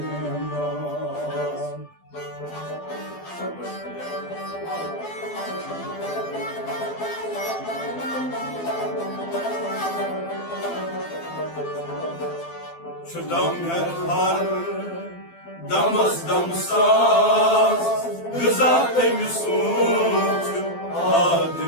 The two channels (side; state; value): right; late; 12 ms